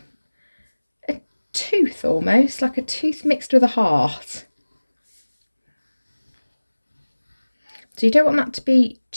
a tooth, almost like a tooth mixed with a heart. So you don't want that to be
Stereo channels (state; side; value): inverted; both; correlation -1.00